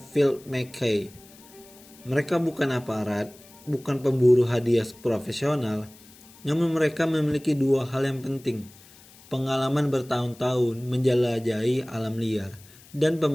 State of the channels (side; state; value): left; noise; hiss, 24 dB below the sound